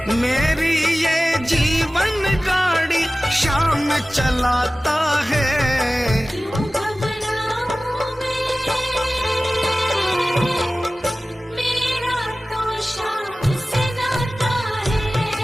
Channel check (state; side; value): normal; both; correlation 0.97